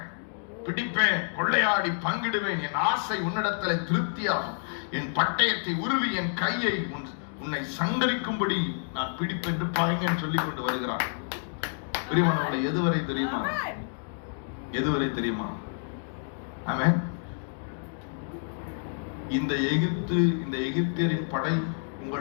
பிடிப்பேன், கொள்ளையாடி பங்கிடுவேன். என் ஆசை உன்னிடத்துல திருப்தியாகும். என் பட்டயத்தை உருவி என் கையை உன்னை சங்கரிக்கும்படி நான் பிடிப்பேன் என்று பகைஞன் சொல்லிக் கொண்டு வருகிறான். பிரியமானவர்களே, எதுவரை தெரியுமா? எதுவரை தெரியுமா? ஆமென். இந்த எகிப்தியரின் படை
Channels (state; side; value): silent; right; digital silence